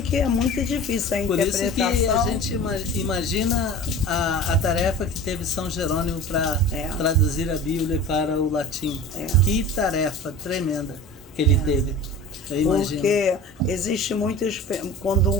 que é muito difícil a interpretação. Por isso que a gente imagina a tarefa que teve São Jerônimo para traduzir a Bíblia para o latim. Que tarefa tremenda que ele teve. Eu imagino. Porque existe muitos... Quando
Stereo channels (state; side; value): normal; both; correlation 0.36